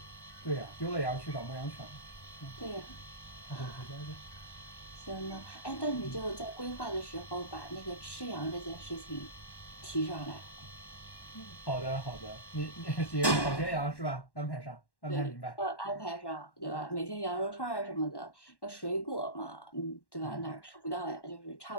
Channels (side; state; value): right; late; 1.1 ms